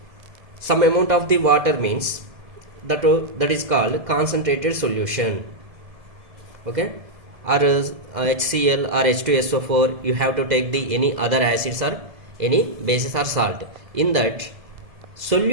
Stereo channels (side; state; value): left; late; 1.7 ms